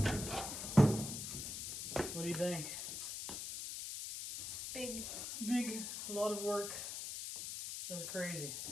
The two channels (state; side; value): noise; left; hiss, 5 dB below the sound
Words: What do you think? Big. Big, a lot of work. That was crazy.